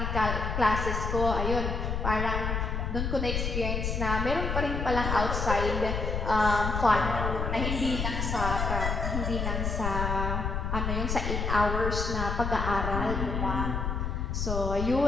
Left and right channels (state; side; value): noise; left; rumble, 1 dB below the sound